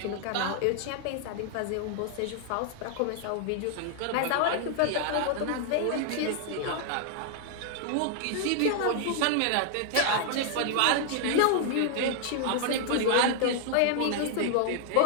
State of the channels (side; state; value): both; different; correlation 0.00